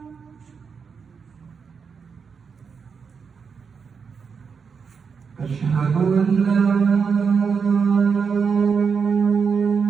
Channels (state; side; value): quieter; left; 5.9 dB